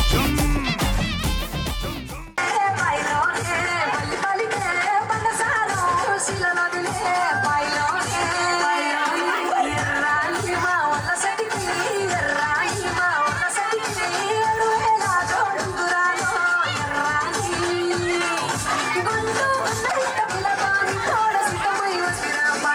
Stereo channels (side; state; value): both; identical; correlation 1.00